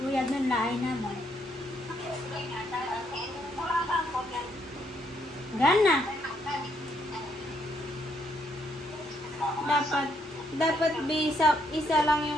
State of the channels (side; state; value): both; normal; correlation 0.73